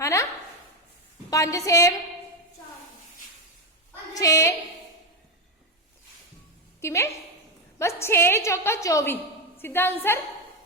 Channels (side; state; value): both; normal; correlation 0.09